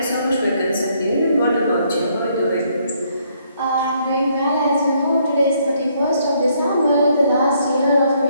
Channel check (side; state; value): both; inverted; correlation -0.70